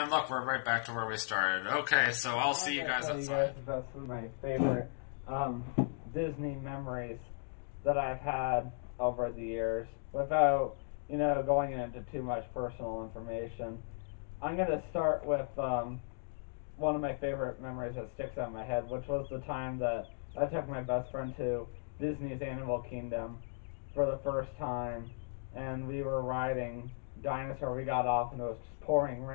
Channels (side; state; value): right; silent; digital silence